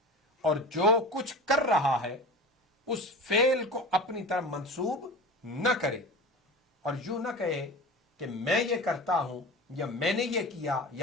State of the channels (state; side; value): normal; both; correlation 0.33